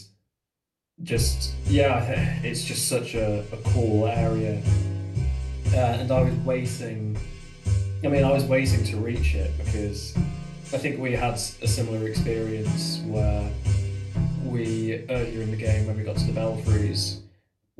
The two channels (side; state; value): both; identical; correlation 1.00